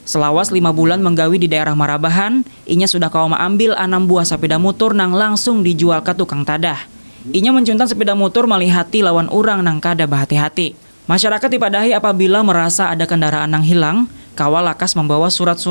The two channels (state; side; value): inverted; both; correlation -1.00